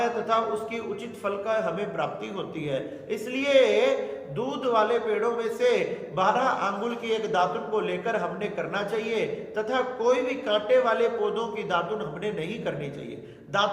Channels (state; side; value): identical; both; correlation 1.00